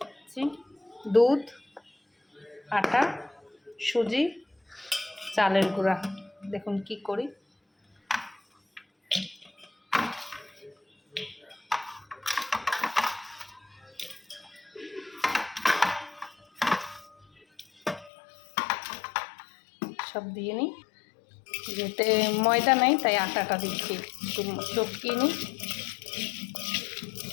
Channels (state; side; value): drops out; right; at 18.1 s